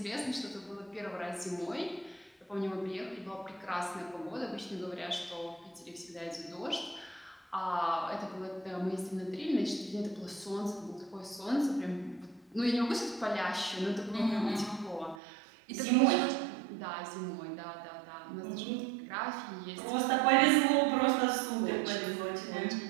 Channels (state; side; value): drops out; left; at 15.2 s